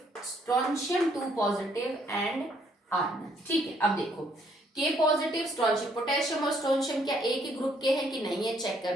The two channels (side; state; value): both; normal; correlation 0.67